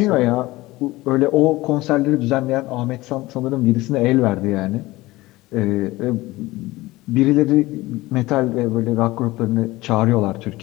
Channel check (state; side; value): quieter; right; 19.3 dB